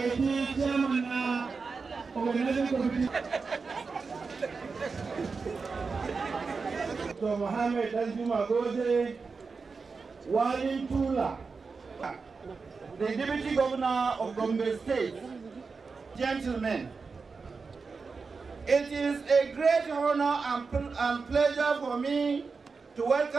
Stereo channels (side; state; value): left; quieter; 4.7 dB